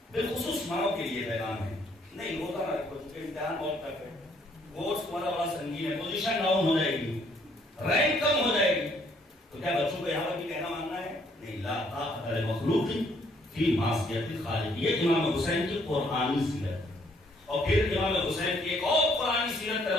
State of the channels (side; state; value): both; normal; correlation 0.66